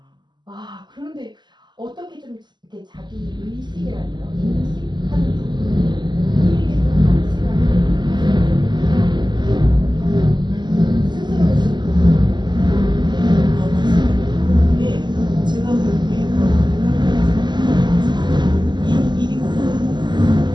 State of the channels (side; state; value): left; late; 0.21 ms